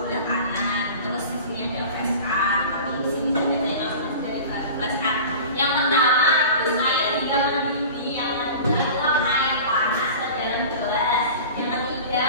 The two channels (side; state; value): both; inverted; correlation -0.37